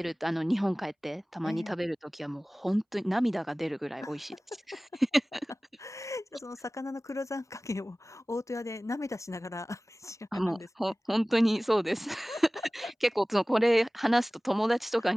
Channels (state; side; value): normal; both; correlation 0.98